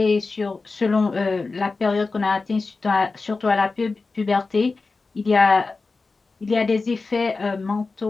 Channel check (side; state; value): right; quieter; 3.9 dB